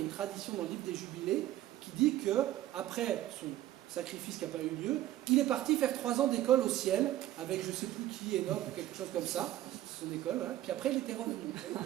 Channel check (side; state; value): left; quieter; 13.8 dB